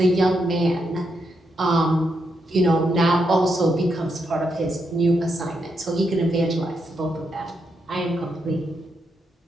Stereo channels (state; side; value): normal; both; correlation 0.81